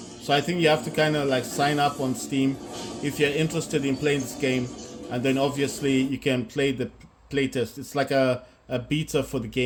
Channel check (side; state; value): both; identical; correlation 1.00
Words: So I think you have to kind of like sign up on Steam if you're interested in playing this game, and then obviously you can play the playtest. It's like a beta for the